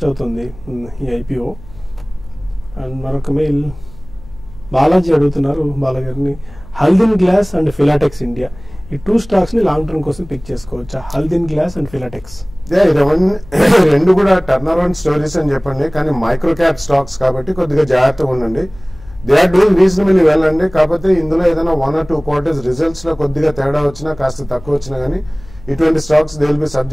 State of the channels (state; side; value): noise; left; hum, 20 dB below the sound